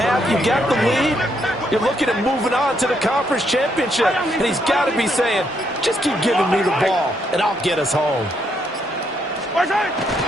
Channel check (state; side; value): normal; both; correlation 0.75